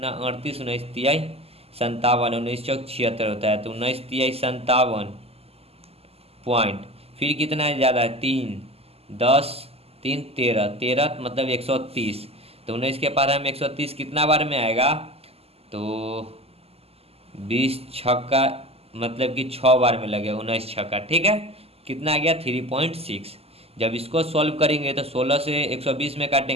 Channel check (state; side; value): late; left; 0.29 ms